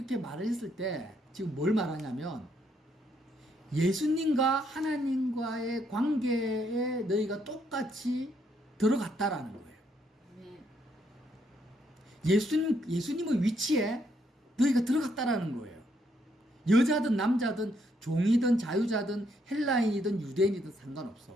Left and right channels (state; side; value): normal; both; correlation 0.74